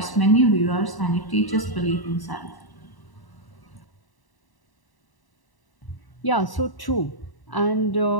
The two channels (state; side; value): late; right; 1.0 ms